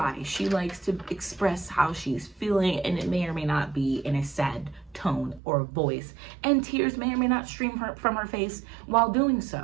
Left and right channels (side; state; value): left; drops out; at 5.4 s